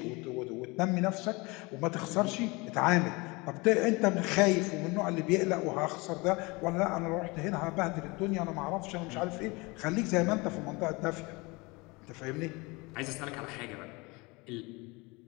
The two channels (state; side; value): quieter; right; 25.6 dB